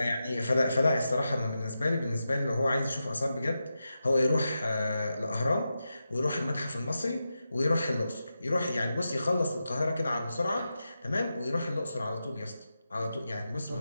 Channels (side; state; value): both; inverted; correlation -0.90